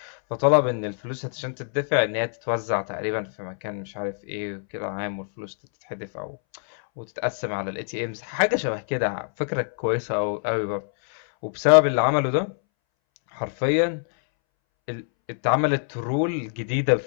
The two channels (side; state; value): right; silent; 62 dB below the other